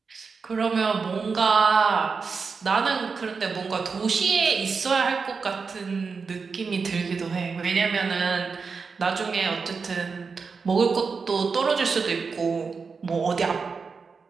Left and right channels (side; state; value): left; quieter; 5.0 dB